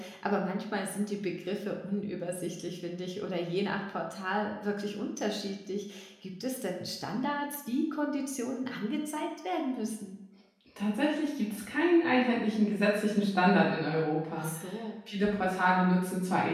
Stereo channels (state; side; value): identical; both; correlation 1.00